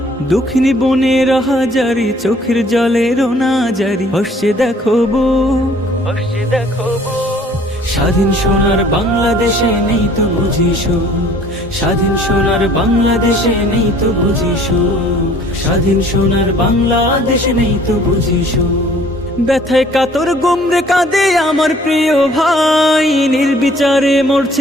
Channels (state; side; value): normal; both; correlation 0.56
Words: দক্ষিণী বনের হাজারি চোখের জলে রোনা জারি, হসছে দেখো বুক, হসছে দেখো বুক। স্বাধীন সোনার বাংলাদেশে নেই তো বুঝি সুখ, স্বাধীন সোনার বাংলাদেশে নেই তো বুঝি সুখ, স্বাধীন সোনার বাংলাদেশে নেই তো বুঝি সুখ। ব্যথায় কাতর গুমরে কাঁদে আমার প্রিয় ভাই, নির্বিচারে